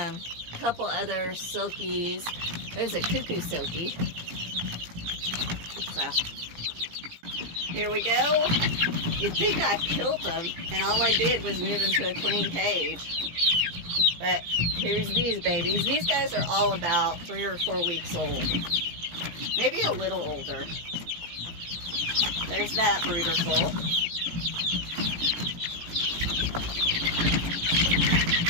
Couple other silkies. There's a cuckoo silkie. So, here we go. You'd think I killed them, and all I did was move them to a clean cage. But here's these babies. These guys are all about 3 or 4 weeks old. Maybe a little older. There's that brooder full.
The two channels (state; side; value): late; left; 18 ms